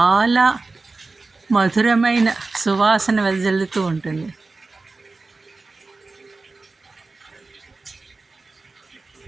మధురమైన సువాసన వెదజల్లుతూ ఉంటుంది.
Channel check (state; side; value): quieter; left; 3.7 dB